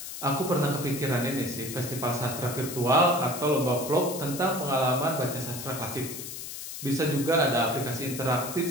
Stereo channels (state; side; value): noise; left; hiss, 9 dB below the sound